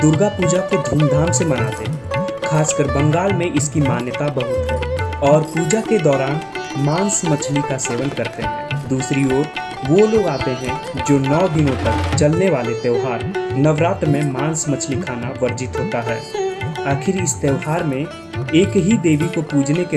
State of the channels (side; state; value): both; identical; correlation 1.00